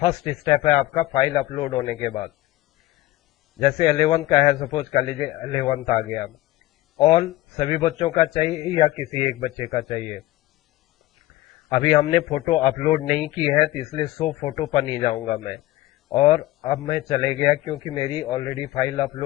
स्टेप है आपका फाइल अपलोड होने के बाद। जैसे 11th का है, सपोज कर लीजिए 11th आ गया। ऑल सभी बच्चों का चाहिए या किसी एक बच्चे का चाहिए? अभी हमने फोटो अपलोड नहीं की है तो इसलिए शो फोटो पर नहीं जाऊंगा मैं, और अब मैं चले गया क्योंकि मेरी ऑलरेडी फाइल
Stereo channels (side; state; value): right; quieter; 17.1 dB